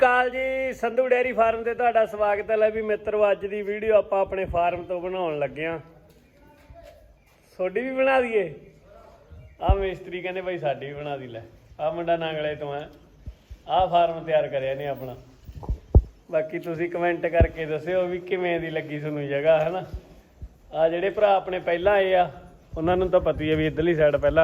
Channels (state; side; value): identical; both; correlation 1.00